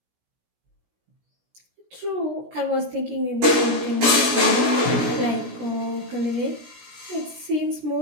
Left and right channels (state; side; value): late; left; 17 ms